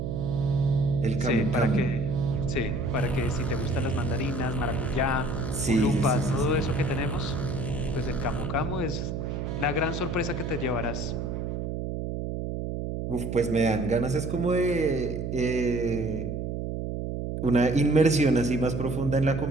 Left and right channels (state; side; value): noise; right; hum, 4 dB below the sound